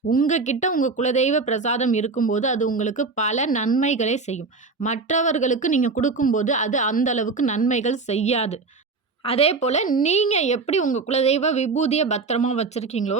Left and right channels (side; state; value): left; quieter; 4.1 dB